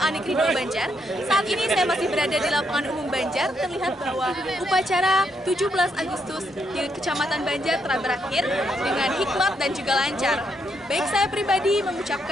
Negeri 2 Banjar. Saat ini saya masih berada di lapangan umum Banjar. Terlihat bahwa upacara 17 Agustus di Kecamatan Banjar telah berakhir dengan hikmat dan juga lancar. Baik, saya pribadi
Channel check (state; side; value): normal; both; correlation 0.77